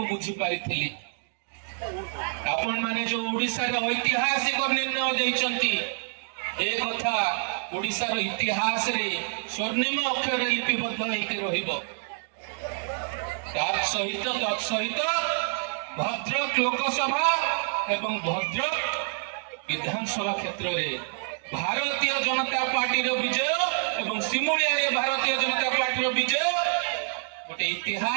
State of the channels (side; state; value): left; silent; 60 dB below the other